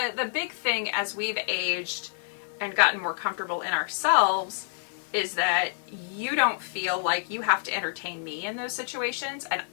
big thing as we've aged and gotten more comfortable in ourselves is that you don't feel like you have to entertain me in those situations, and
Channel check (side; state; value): right; silent; digital silence